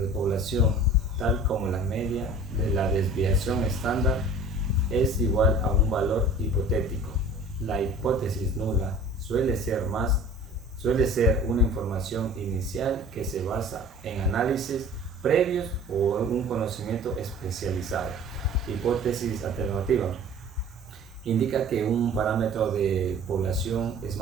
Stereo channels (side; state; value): both; normal; correlation 0.45